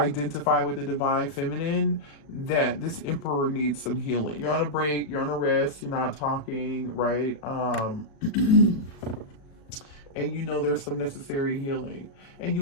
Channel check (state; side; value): late; right; 36 ms